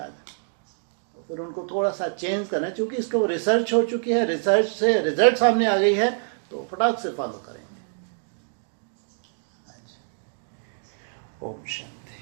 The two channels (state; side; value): silent; left; digital silence